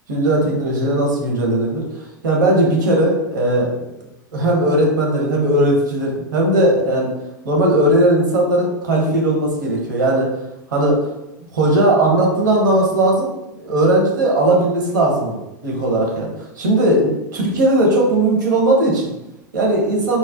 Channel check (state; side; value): normal; both; correlation 0.01